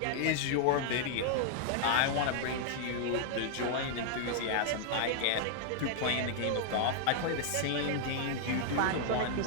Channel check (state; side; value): different; both; correlation -0.01